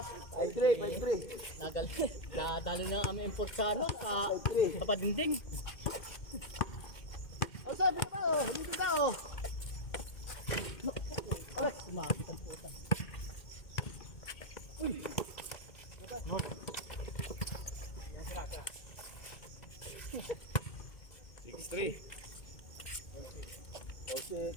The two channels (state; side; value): late; right; 2.2 ms